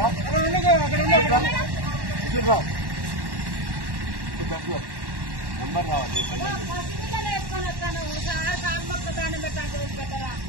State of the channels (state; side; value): late; left; 1.1 ms